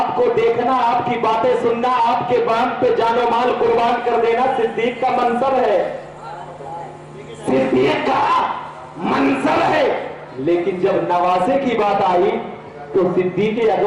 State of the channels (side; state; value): both; identical; correlation 1.00